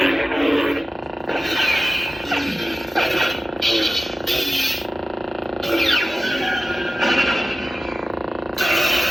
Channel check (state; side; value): normal; both; correlation 0.95